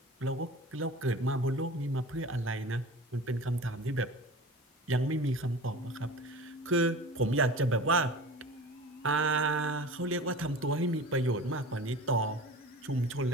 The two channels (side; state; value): both; normal; correlation 0.36